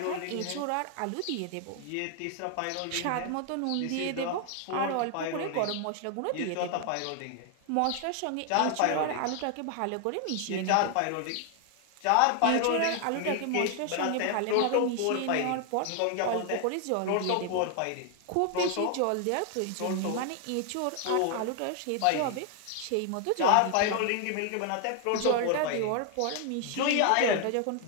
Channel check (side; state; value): both; different; correlation 0.00